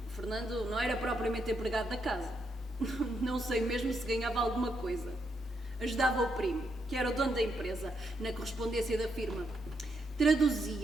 O Fernando não era propriamente empregado da casa. Não sei mesmo se ganhava alguma coisa. Ajudava o primo, que era o dono da empresa, na correspondência da firma.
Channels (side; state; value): both; normal; correlation 0.79